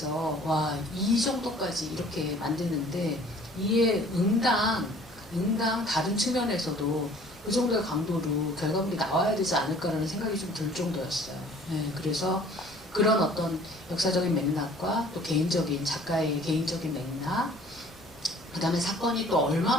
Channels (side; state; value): both; normal; correlation 0.52